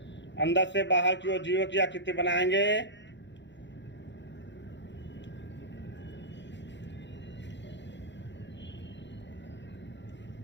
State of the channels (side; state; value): right; late; 0.52 ms